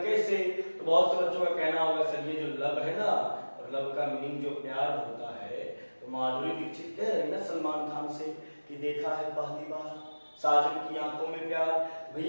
तो बहुत से बच्चों का कहना होगा सर ये जो लव है ना, और लव का मीनिंग जो प्यार होता है, तो माधुरी दीक्षित कह रही ना सलमान खान से कि देखा है पहली बार साजन की आंखों में प्यार।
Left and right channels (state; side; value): inverted; both; correlation -1.00